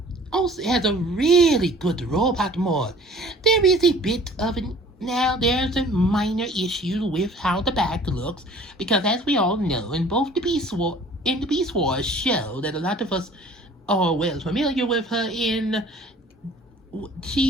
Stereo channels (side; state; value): both; normal; correlation 0.49